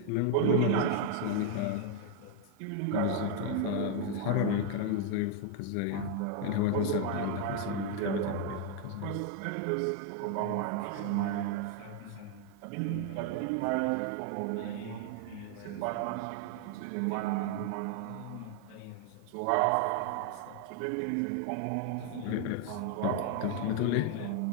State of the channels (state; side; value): different; both; correlation 0.01